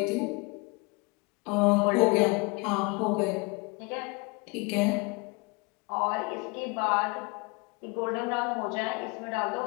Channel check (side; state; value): right; quieter; 28.5 dB